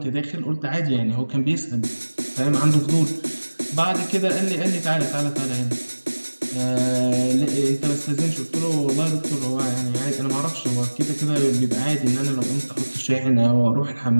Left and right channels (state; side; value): inverted; both; correlation -1.00